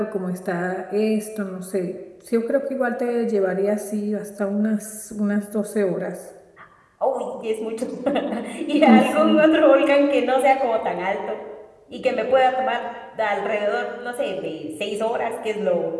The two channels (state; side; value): identical; both; correlation 1.00